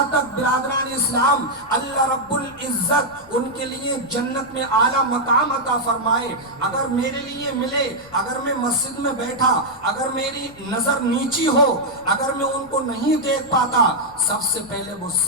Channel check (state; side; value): noise; left; rumble, 27 dB below the sound